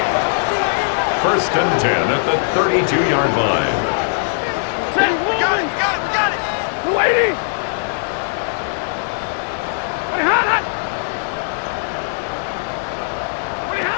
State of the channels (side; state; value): right; silent; digital silence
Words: 1st and 10 at the 32-yard line. Got it. We're waiting.